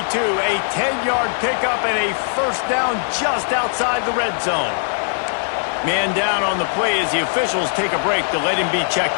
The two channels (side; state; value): right; silent; digital silence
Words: A 10-yard pickup and a first down just outside the red zone. Man down on the play as the officials take a break to let him be